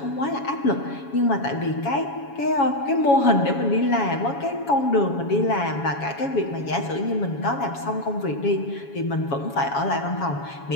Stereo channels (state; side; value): late; right; 7.2 ms